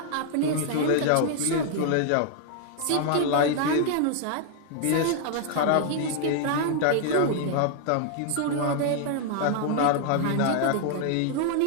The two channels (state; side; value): different; both; correlation 0.00